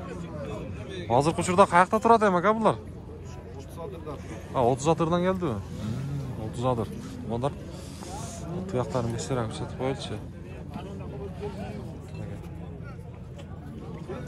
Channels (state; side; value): identical; both; correlation 1.00